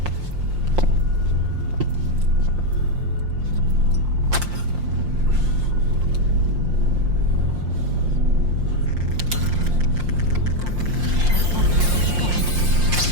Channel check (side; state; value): left; late; 5.7 ms